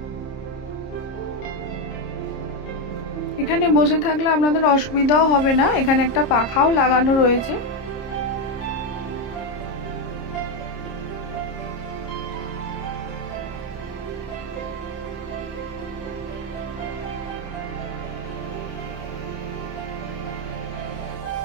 এখানে বসে থাকলে আপনাদের অসুবিধাও হবে না, এখানে একটা পাখাও লাগানো রয়েছে।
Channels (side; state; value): right; late; 30 ms